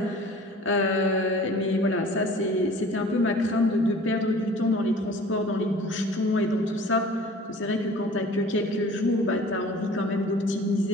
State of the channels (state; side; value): normal; both; correlation 0.46